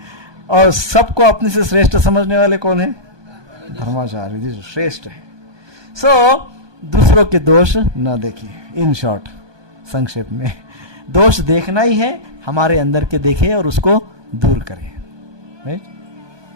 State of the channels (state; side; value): late; left; 1.2 ms